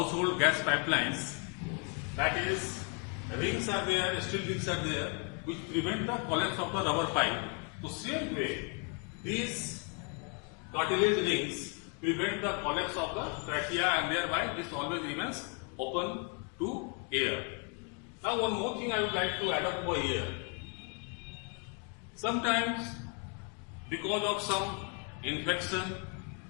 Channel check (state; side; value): quieter; right; 37.8 dB